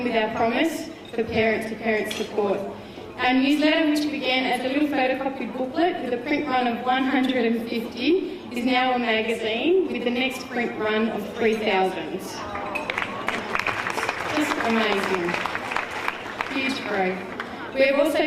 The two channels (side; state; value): both; identical; correlation 1.00